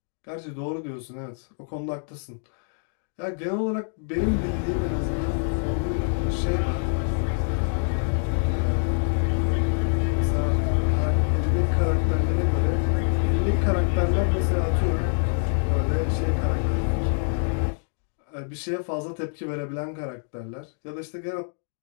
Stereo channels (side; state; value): right; silent; 61 dB below the other